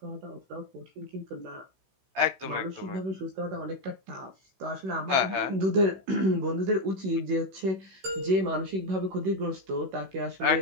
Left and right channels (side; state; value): left; late; 16 ms